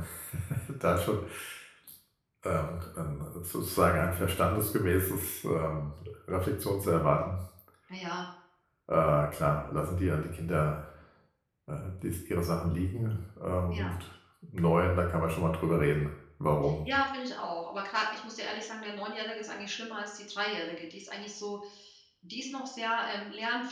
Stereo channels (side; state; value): both; identical; correlation 1.00